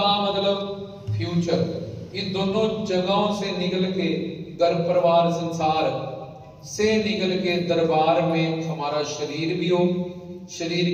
मतलब फ्यूचर, इन दोनों जगहों से निकल के घर परिवार संसार से निकल के दरबार में हमारा शरीर भी हो, शरीर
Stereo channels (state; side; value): identical; both; correlation 1.00